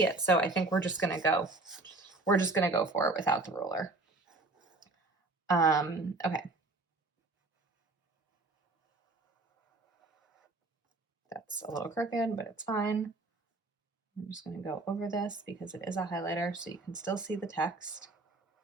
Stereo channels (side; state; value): left; quieter; 3.2 dB